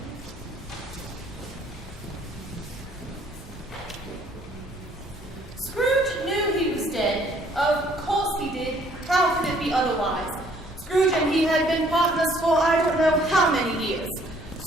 Scrooge knew he was dead. Of course he did. How could it be otherwise? Scrooge and he had been partners for I don't know how many years.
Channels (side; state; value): both; normal; correlation 0.61